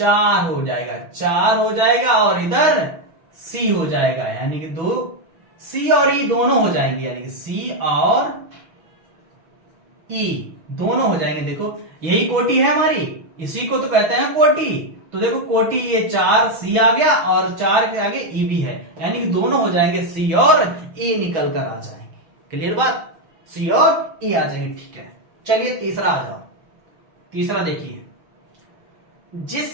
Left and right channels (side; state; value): left; late; 6.1 ms